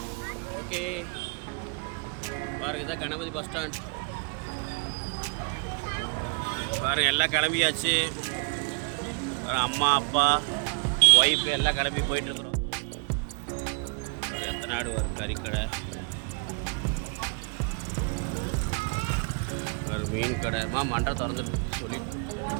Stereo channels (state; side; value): quieter; left; 37.6 dB